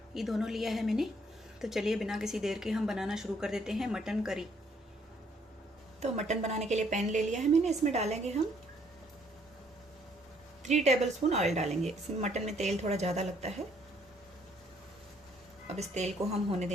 ये दोनों लिया है मैंने। तो चलिए बिना किसी देर के हम बनाना शुरू कर देते हैं मटन करी। तो मटन बनाने के लिए पैन ले लिया है मैंने। इसमें डालेंगे हम 3 टेबलस्पून ऑयल डालेंगे। इसमें मटन में तेल थोड़ा ज़्यादा लगता है। अब इस तेल को हम होने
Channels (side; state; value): both; normal; correlation 0.66